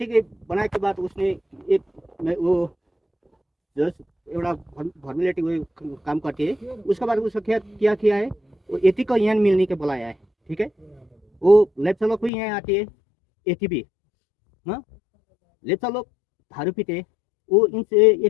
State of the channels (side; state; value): right; drops out; at 12.3 s